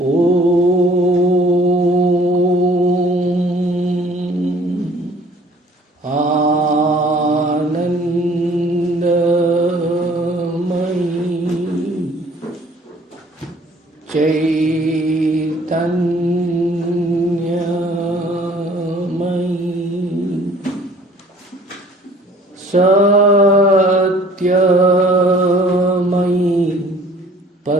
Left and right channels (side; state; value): both; normal; correlation 0.54